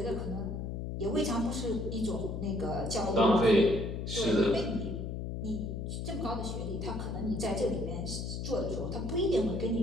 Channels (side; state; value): left; noise; hum, 4 dB below the sound